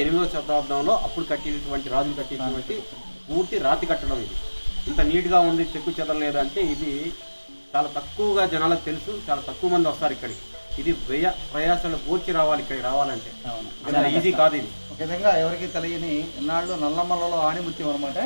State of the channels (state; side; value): inverted; both; correlation -1.00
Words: 8వ శతాబ్దంలో అప్పుడు కట్టినటువంటి రాజులు కట్టినటువంటి పూర్తి రాతి కట్టడం. ఇది ఇంత నీట్గా ఉంది, చెక్కు చెదరలేదు అంటే ఇది చాలా తక్కువగా జనాలకు తెలుసు. చాలా తక్కువ మంది వస్తారు ఇక్కడికి. ఇది ప్రయాసాలు పూర్తి రావాలి ఇక్కడికి రావాలంటే, ఈజీ కాదు. ఇది ఒక విధంగా ఎవరికి తెలియని ఇన్నాళ్ళు నల్లమల్లలో ఆణిముత్యం అనమాట.